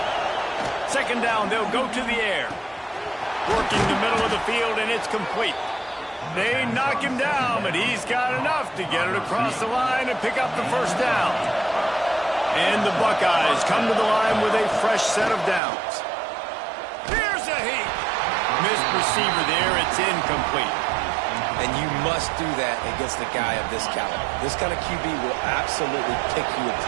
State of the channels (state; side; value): drops out; left; at 15.6 s